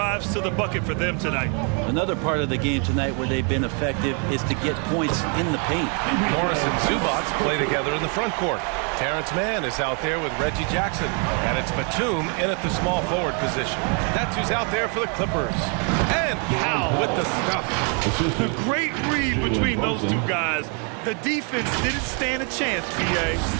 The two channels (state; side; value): quieter; left; 37.9 dB